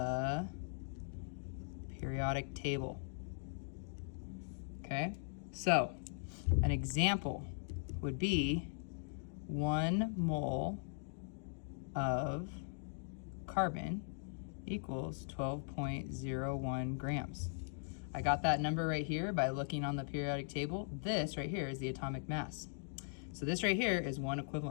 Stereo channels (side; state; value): right; silent; digital silence